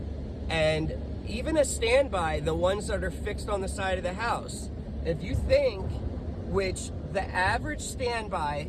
And even a standby, the ones that are fixed on the side of the house, if you think, which the average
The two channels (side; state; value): both; identical; correlation 1.00